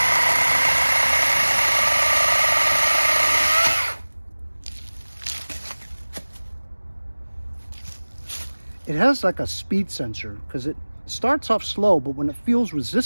It has like a speed sensor because it starts off slow, but when it feels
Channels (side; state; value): both; inverted; correlation -1.00